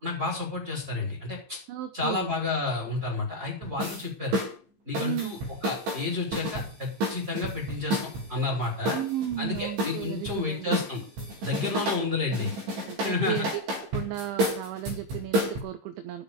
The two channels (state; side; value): late; left; 15 ms